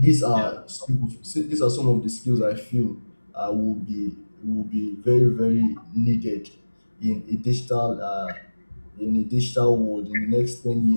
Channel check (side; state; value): both; inverted; correlation -1.00